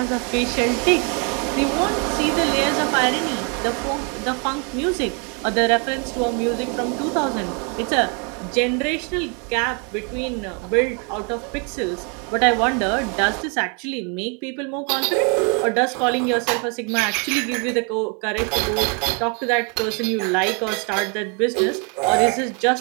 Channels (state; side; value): quieter; left; 36.1 dB